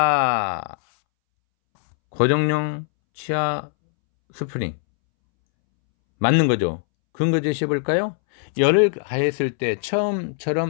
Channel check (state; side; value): silent; right; 65 dB below the other